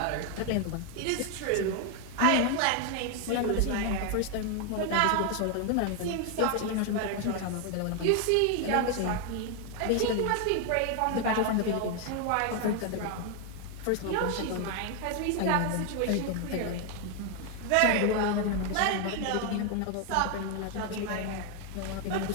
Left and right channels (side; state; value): both; different; correlation 0.01